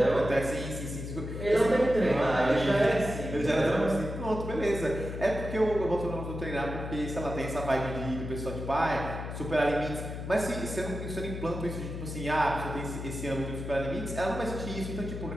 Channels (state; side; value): noise; left; hum, 7 dB below the sound